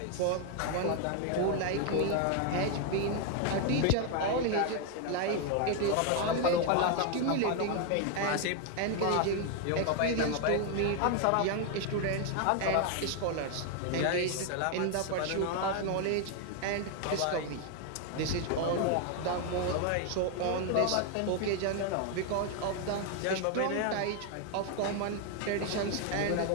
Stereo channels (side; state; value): both; different; correlation 0.01